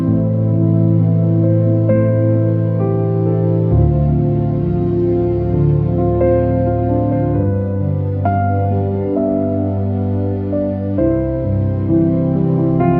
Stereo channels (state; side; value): identical; both; correlation 1.00